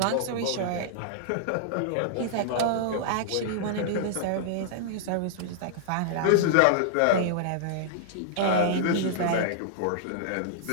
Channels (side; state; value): both; different; correlation -0.01